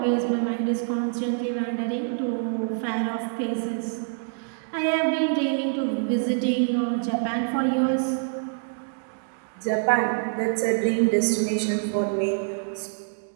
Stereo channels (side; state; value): left; silent; digital silence